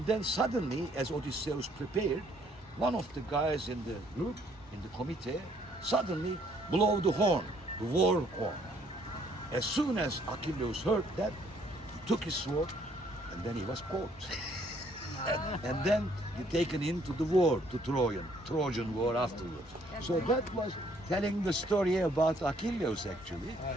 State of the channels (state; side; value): normal; both; correlation 0.65